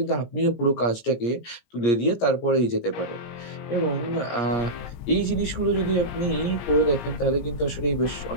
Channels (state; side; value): late; right; 17 ms